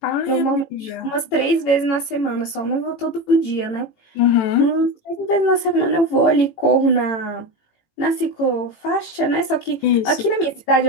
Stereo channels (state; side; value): late; right; 18 ms